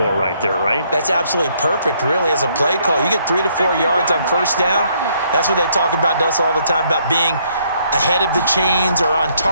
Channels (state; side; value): inverted; both; correlation -0.69